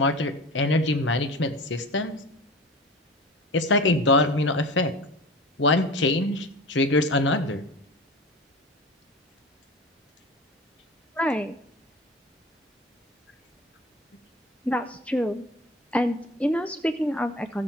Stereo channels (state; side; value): normal; both; correlation 0.34